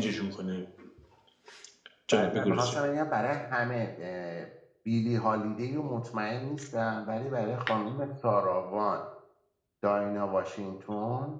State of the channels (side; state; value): both; identical; correlation 1.00